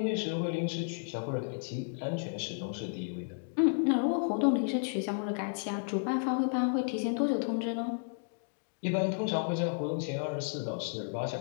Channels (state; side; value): silent; right; digital silence